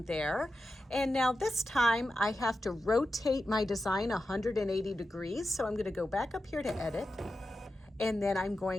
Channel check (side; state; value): both; normal; correlation 0.91